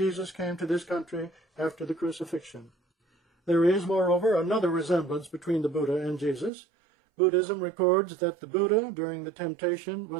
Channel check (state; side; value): drops out; left; at 6.5 s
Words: came to this country after the crucifixion. There is, moreover, another resemblance between the Buddha and Jesus. Buddhism records that the Buddha, during the temptation,